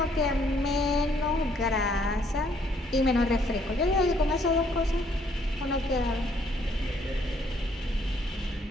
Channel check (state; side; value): normal; both; correlation 0.66